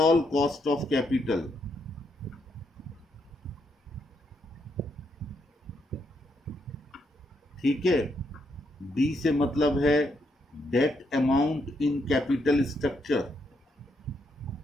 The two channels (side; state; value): both; normal; correlation 0.77